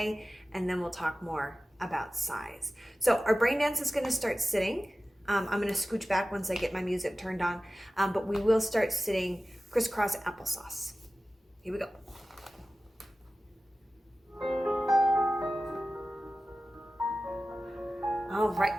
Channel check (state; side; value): normal; both; correlation 0.95